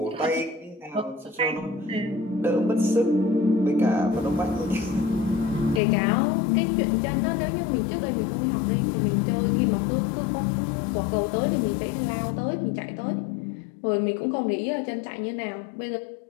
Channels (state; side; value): drops out; right; at 5.8 s